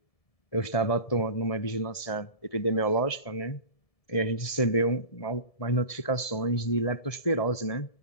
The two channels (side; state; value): right; late; 1.7 ms